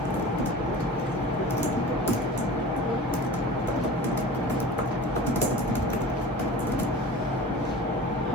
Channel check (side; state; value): both; normal; correlation 0.37